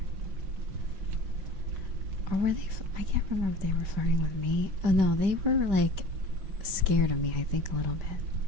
Or were they? I can't remember if they were flirting with me. Oh no, they were like scared of me, I think, a little bit.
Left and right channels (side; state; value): left; late; 5.1 ms